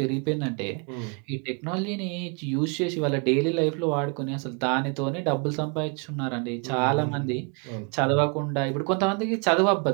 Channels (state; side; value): quieter; left; 34.7 dB